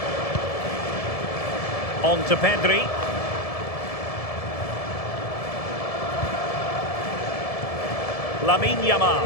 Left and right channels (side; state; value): right; late; 1.7 ms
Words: On to Pedri. Lamine